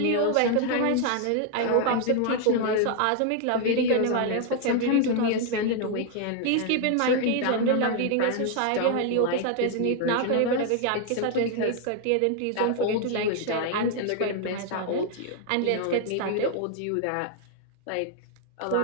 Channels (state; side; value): different; both; correlation 0.00